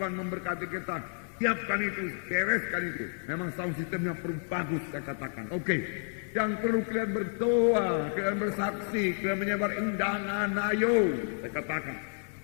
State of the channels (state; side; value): silent; right; 57 dB below the other